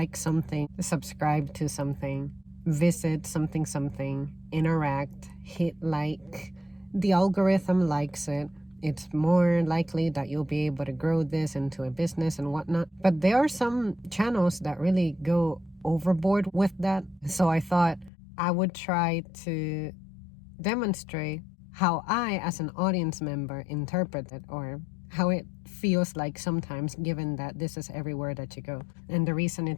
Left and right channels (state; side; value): drops out; right; at 18.1 s